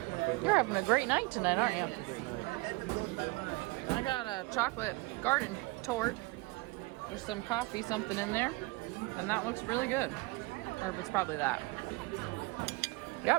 favorite. You're having a great night tonight, aren't you? It's a great night. I got a chocolate garden tort with some coffee, something in there, and that looks really good. Or it's probably that.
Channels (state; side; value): quieter; left; 24.2 dB